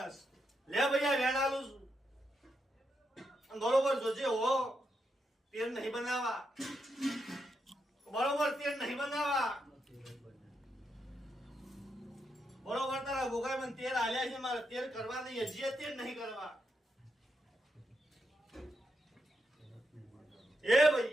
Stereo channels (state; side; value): normal; both; correlation 0.83